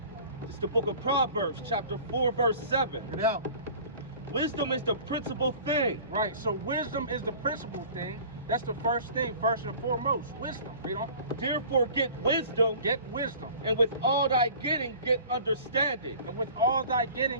It's the book of Proverbs, chapter 4, verse 7. Get out. Wisdom is the principal thing. Right, so wisdom is the principal thing. That's the first thing, first and foremost. Wisdom. Read on. Therefore get wisdom, Get wisdom. and with all thy getting, get understanding. And with all thy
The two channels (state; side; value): inverted; both; correlation -0.45